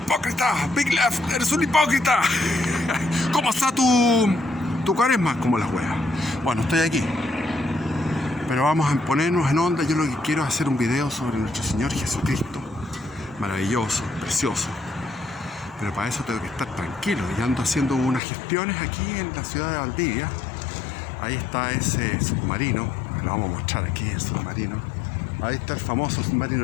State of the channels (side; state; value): right; drops out; at 18.2 s